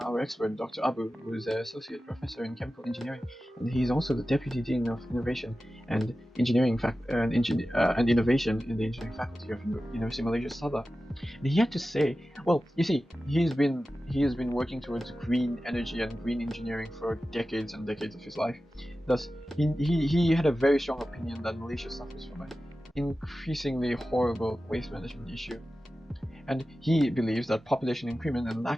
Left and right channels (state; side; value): normal; both; correlation 0.94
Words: expert, Dr. Abu, who is an associate professor in chemical engineering, and he's also the deputy dean of innovation and engineering and innovation in the engineering faculty of University Malaysia Sabah. And he had to say, well, you see, he has been working towards green energy and green engineering for decades and decades of his life. Thus, he had a very strong opinion that Malaysia suffers from an increasingly horrible waste management issue. And he believes that population increment and